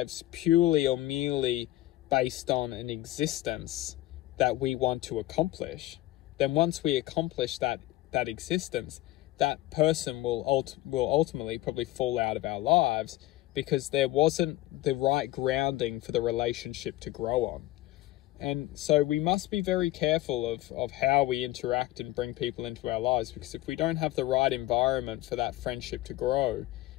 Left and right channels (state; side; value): quieter; right; 16.5 dB